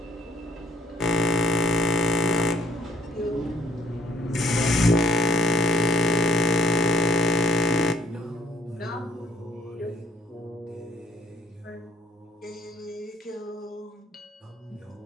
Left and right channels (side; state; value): both; normal; correlation 0.65